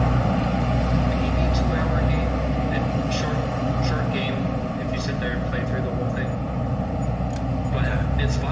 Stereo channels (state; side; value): identical; both; correlation 1.00